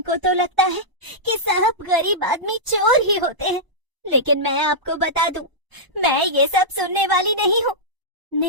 तो लगता है कि सब गरीब आदमी चोर ही होते हैं। लेकिन मैं आपको बता दूं, मैं ये सब सुनने वाली नहीं हूँ।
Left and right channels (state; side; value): late; left; 1.0 ms